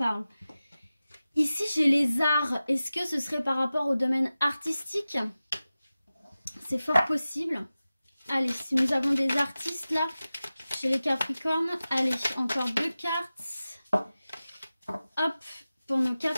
Ici j'ai les arts. Est-ce que ce serait par rapport au domaine artistique? C'est fort possible. Allez, si nous avons des artistes là... Chez les Capricornes, allez, encore 2 cartes. Hop, pour nos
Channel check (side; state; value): both; inverted; correlation -0.95